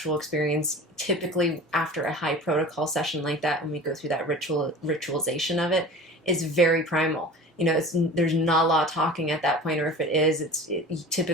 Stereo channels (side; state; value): both; normal; correlation 0.37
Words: experience, typically after a high protocol session like that, when we go through that ritualization of it, is very primal. There's not a lot of talking at that point, or if it is, it's